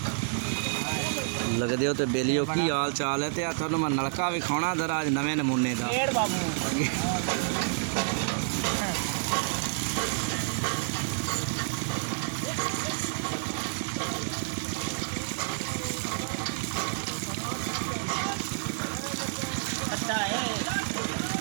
लगदे हो तो बेलियो की हाल चाल है। तो थोड़ा मैं नलका विखाना जरा अज नवे नमूने का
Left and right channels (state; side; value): silent; left; digital silence